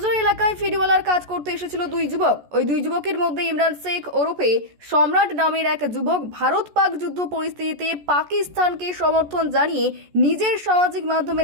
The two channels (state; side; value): late; left; 14 ms